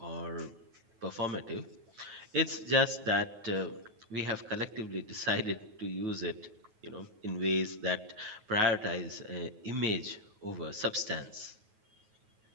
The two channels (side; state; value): left; late; 9.3 ms